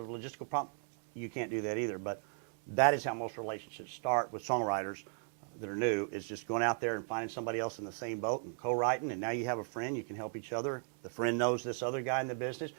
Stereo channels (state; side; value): silent; left; 53 dB below the other